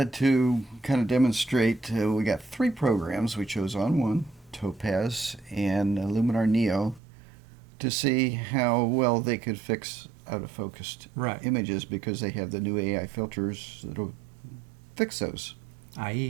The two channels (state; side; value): drops out; left; at 7.0 s